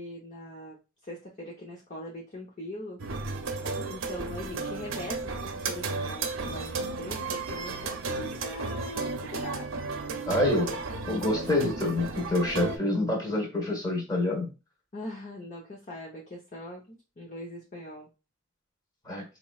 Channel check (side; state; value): both; normal; correlation 0.29